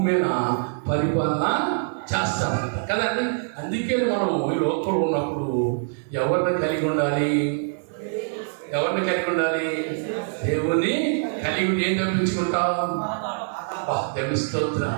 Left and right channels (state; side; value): silent; left; digital silence